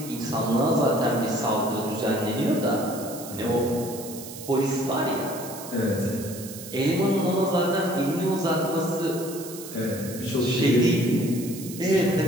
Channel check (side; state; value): right; noise; hiss, 13 dB below the sound